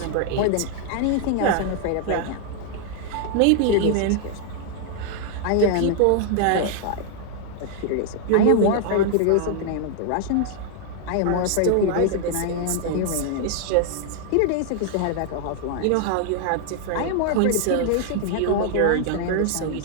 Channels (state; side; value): different; both; correlation 0.00